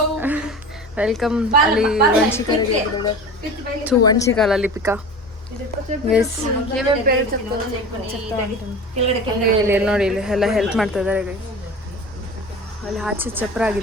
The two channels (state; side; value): normal; both; correlation 0.35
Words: ವೆಲ್ಕಮ್. ಅಲ್ಲಿ ವಂಶಿಕಾಲಲ್ಲಿ ಪಿಕಾ ಗೈಸ್. ಇಲ್ಲಿ ನೋಡಿ, ಇಲ್ಲಿ ಎಲ್ಲ ಹೆಲ್ಪ್ ಮಾಡ್ತಾ ಇದ್ದಾರೆ ಗೈಸ್. ಅಲ್ಲಿ ಆಚೆ ಚಪ್ರ